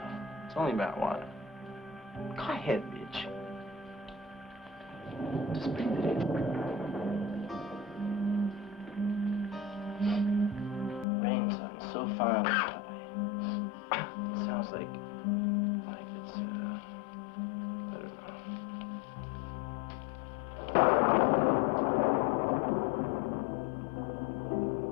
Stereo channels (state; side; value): drops out; right; at 11.1 s